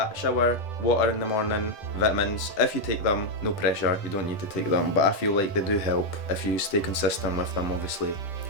shower, water in the morning, vitamins, if you take them, no pressure, you don't need to take them, but I feel like they do help if you stay consistent with them, obviously.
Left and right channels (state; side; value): late; right; 10 ms